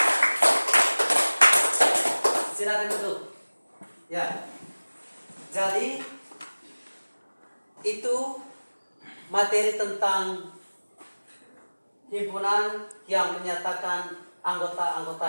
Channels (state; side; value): inverted; both; correlation -1.00